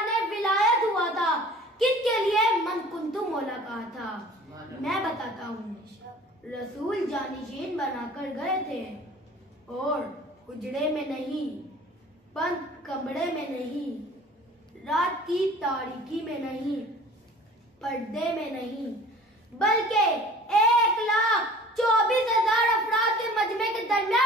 विलायत हुआ था, किसके लिए मन कुंतु मौला कहा था। मैं बताता हूँ रसूल जानशीन बनाकर गए थे और उजड़े में नहीं, बंद कमरे में नहीं, रात की तारीकी में नहीं, पर्दे में नहीं, बल्कि 1,24,000 अफराद के मजमे के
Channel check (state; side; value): normal; both; correlation 0.46